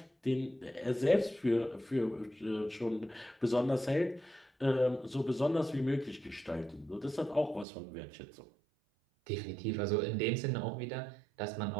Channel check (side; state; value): left; drops out; at 7.7 s